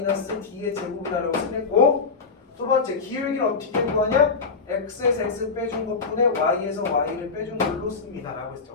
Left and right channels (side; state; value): right; quieter; 4.8 dB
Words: 제곱이라고 쓰겠고 두 번째 기울기를 어떻게 구하냐? X에서 X 빼준 것분에 Y에서 Y를 빼준 걸로 씁니다 라고